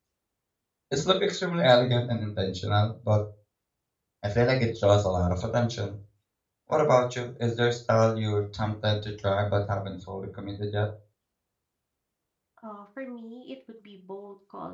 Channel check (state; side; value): identical; both; correlation 1.00